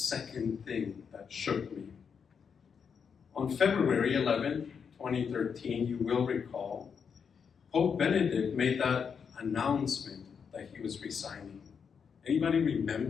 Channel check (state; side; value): quieter; right; 6.5 dB